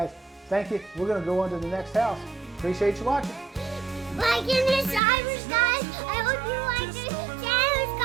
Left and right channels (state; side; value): drops out; left; at 5.0 s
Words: thank you. We're going to go on to the next house. Appreciate you watching. Like and subscribe, guys. I hope you like this channel, guys.